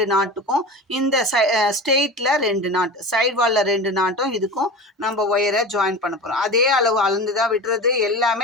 நாட்டுக்கும் இந்த ஸ்ட்ரெயிட்டில் 2 நாட்டு, சைடு வாலில் 2 நாட்டும் இதுக்கும் நம்ம ஒயரை ஜாயின் பண்ண போகிறோம். அதே அளவு அளந்து தான் விட்டுறது.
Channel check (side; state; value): both; normal; correlation 0.30